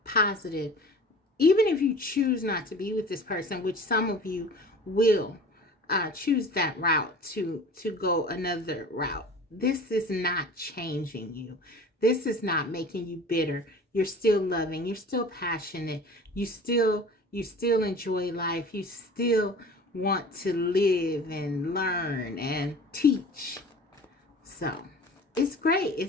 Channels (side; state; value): both; normal; correlation 0.42